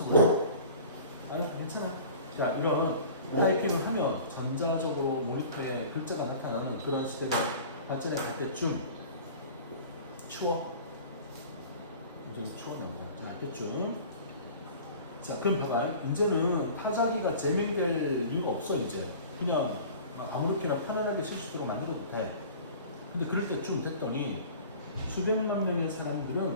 그래. 아니, 괜찮아. 자, 이런 타이핑을 하면 전자적으로 모니터에 글자가 나타나는 그런 시대가 발전해 갈 때쯤 추워. 굉장히 추워납니다. 자, 알겠죠? 자, 그럼 봐봐. 이제는 타자기가 재밍될 이유가 없어, 이제. 그냥 아무렇게나 편안하게 쓸 수 있도록 만들어도 돼. 근데 그럴 때쯤 됐더니 수백만 명의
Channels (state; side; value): inverted; both; correlation -0.43